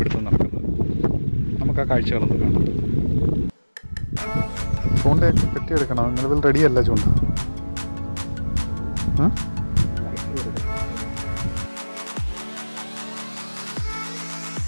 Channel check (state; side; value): inverted; both; correlation -1.00